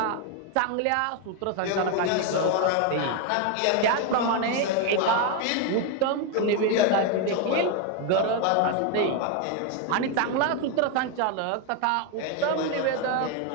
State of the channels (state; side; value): different; both; correlation 0.01